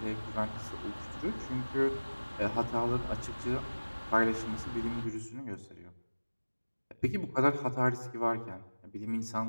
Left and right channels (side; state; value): both; inverted; correlation -1.00